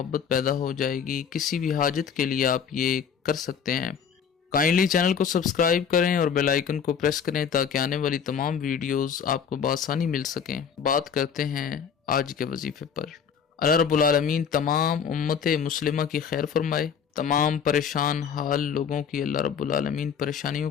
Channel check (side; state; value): right; quieter; 7.2 dB